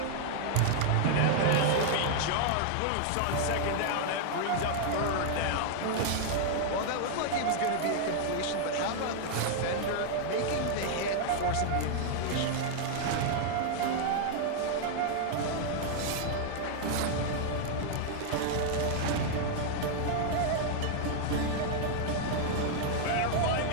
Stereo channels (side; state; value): both; different; correlation 0.00